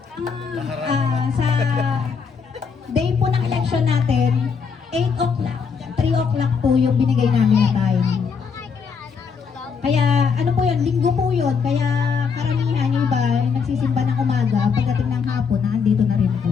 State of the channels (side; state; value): right; quieter; 5.9 dB